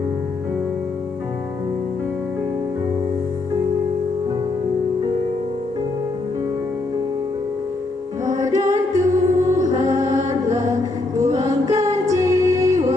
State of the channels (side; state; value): right; quieter; 3.1 dB